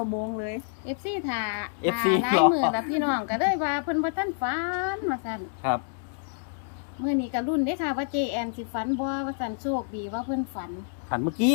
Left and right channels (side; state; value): right; silent; digital silence